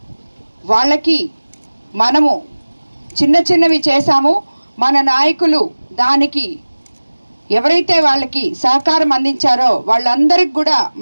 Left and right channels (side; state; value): both; inverted; correlation -1.00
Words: వాళ్ళకి మనము చిన్నవి చేశాము. మన నాయకులు దానికి ఎవరైతే వాళ్ళకి సహకారం అందించారో వాళ్ళందరికీ కూడా